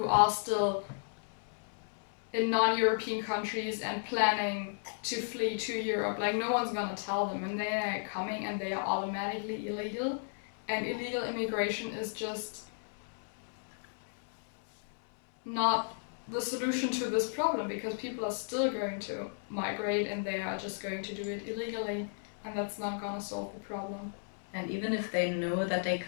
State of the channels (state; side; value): silent; right; 55 dB below the other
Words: are still in non-European countries and planning to flee to Europe? Like, no one's gonna tell them, and they are coming and they are automatically illegal, and illegal immigration is just not the solution to this problem, because people are still going to migrate and they are just going to do it illegally, and that's not gonna solve the problem. And even if they know that they